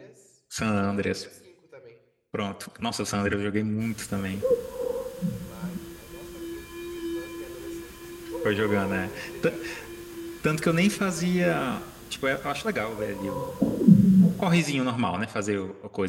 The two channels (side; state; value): both; identical; correlation 1.00